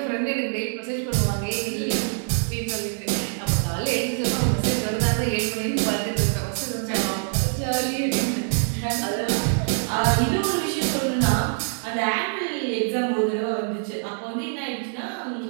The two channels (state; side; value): silent; left; 62 dB below the other